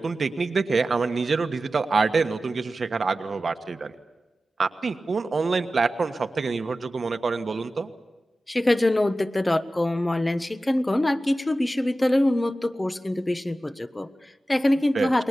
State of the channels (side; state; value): both; normal; correlation 0.94